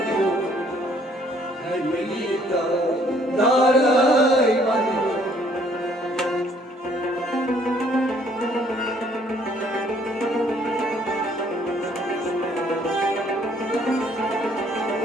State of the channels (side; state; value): both; normal; correlation 0.62